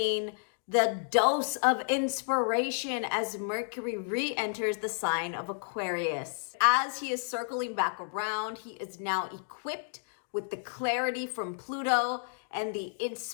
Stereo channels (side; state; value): right; silent; digital silence